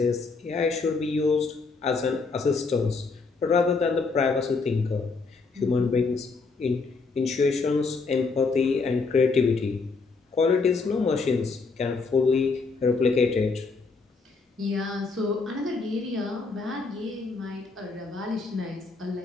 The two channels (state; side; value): quieter; right; 4.3 dB